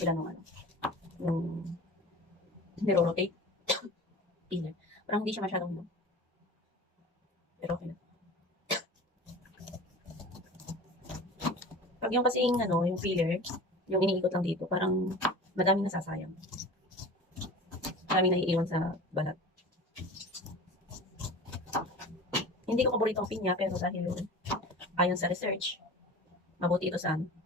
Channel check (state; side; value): normal; both; correlation 0.37